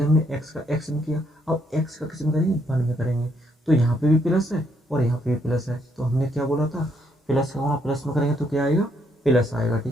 हमने x का x में किया, अब x का किस में करेंगे, 1 में करेंगे। तो यहाँ पे भी प्लस है और यहाँ पे भी प्लस है। तो हमने क्या बोला था, प्लस का गुणा प्लस में करेंगे तो क्या आएगा, प्लस आएगा,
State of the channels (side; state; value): both; normal; correlation 0.73